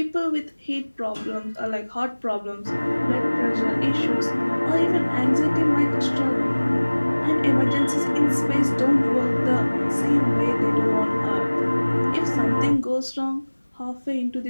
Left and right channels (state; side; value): inverted; both; correlation -1.00